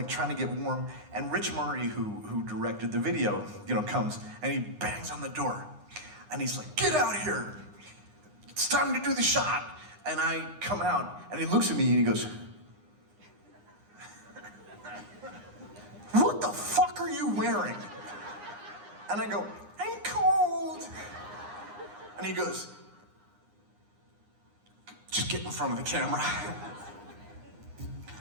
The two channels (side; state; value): left; late; 9.8 ms